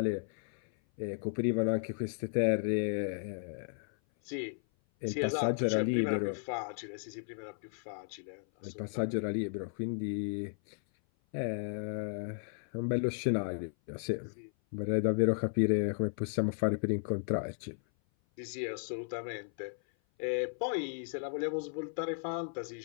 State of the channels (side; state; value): right; silent; 55 dB below the other